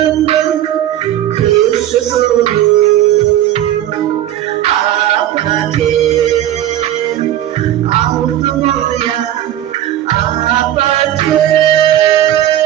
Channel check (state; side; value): quieter; left; 12.4 dB